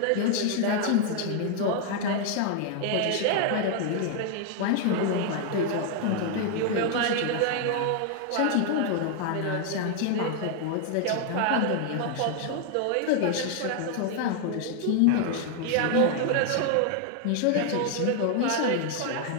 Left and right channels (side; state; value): both; different; correlation 0.00